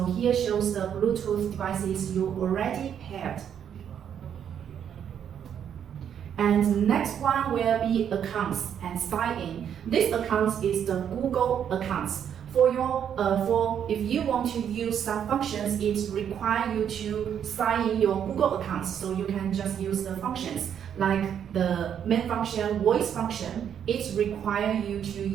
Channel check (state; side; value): quieter; left; 8.8 dB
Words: here shows the Bluetooth devices you already paired. And next one will be accounts and sign in. This account is the Google accounts. If you want to use some functions, it requires you to sign in your Google account. So you can just use the functions like the main function, voice function. It requires you to